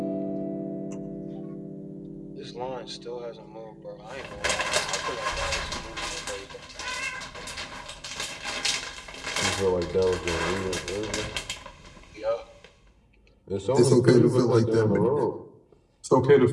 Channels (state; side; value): identical; both; correlation 1.00